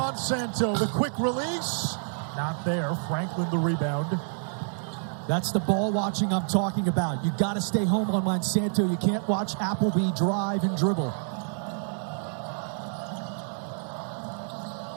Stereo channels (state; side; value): silent; left; 59 dB below the other